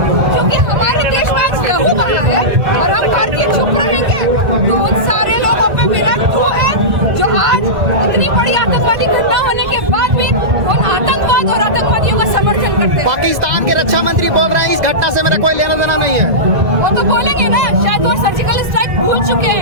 क्योंकि हमारे देश में आज लहू बहा है और हम भारतीय चुप रहेंगे तो उन सारे लोगों पे मेरा क्यों है जो आज इतनी बड़ी आतंकवादी घटना होने के बाद भी उन आतंकवाद और आतंकवादियों का समर्थन करते हैं। पाकिस्तान के रक्षा मंत्री बोल रहे हैं इस घटना से मेरा कोई लेना देना नहीं है। वो तो बोलेंगे ना, शायद वो सर्जिकल स्ट्राइक भूल चुके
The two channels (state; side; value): late; left; 1.6 ms